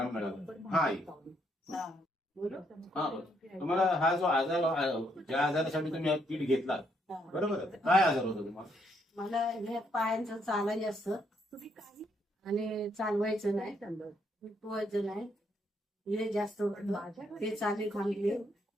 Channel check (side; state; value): both; normal; correlation 0.73